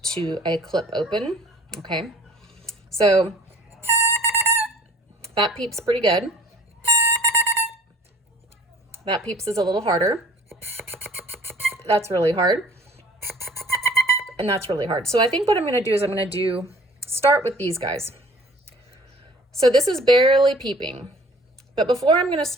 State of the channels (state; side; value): normal; both; correlation 0.52